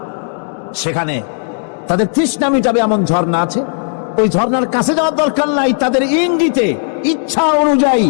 সেখানে তাদের তৃষ্ণা মিটাবে এমন ঝর্ণা আছে। ওই ঝর্ণার কাছে যাওয়ার দরকার নাই, তাদের ইঙ্গিতে ইচ্ছা অনুযায়ী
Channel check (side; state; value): right; silent; 64 dB below the other